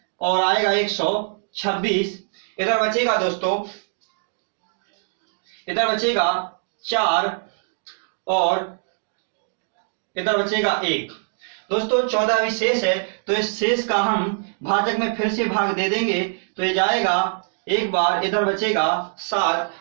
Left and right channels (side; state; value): left; silent; digital silence